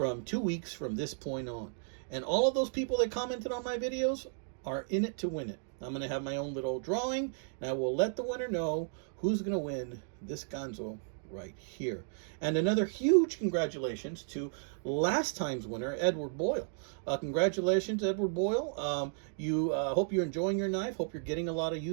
2 weeks from this point on. And all of those people that commented on my videos are in it to win it. I'm going to have my own little drawing, and I will let the winner know who's going to win this Ganzo right here. And another huge congratulations to last time's winner, Edward Boyle. Congratulations, Edward Boyle. Hope you're enjoying your knife. Hope you're getting a lot of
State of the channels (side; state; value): left; silent; digital silence